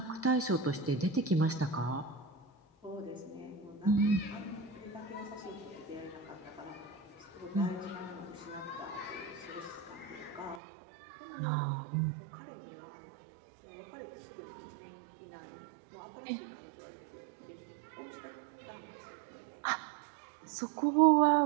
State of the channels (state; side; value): drops out; left; at 10.6 s